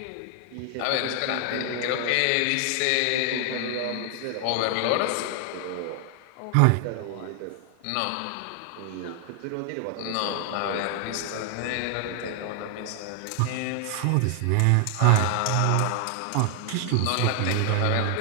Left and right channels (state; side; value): different; both; correlation 0.00